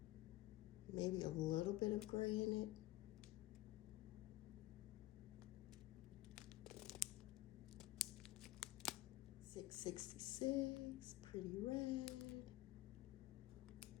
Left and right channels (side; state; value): right; quieter; 16.8 dB